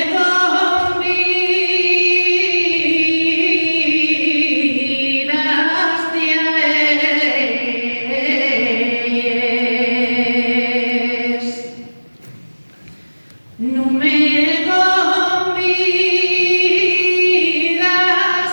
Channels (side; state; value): both; inverted; correlation -1.00